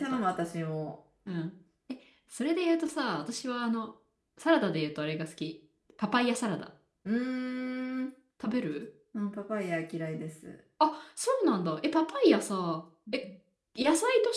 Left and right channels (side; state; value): both; identical; correlation 1.00